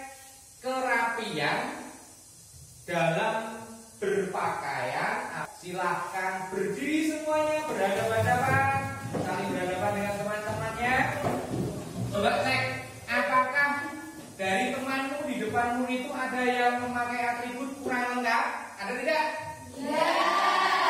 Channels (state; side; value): identical; both; correlation 1.00